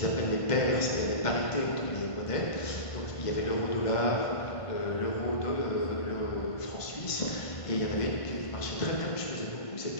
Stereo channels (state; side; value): late; right; 1.5 ms